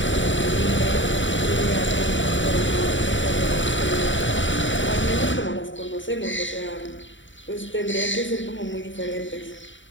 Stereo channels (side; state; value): right; late; 0.55 ms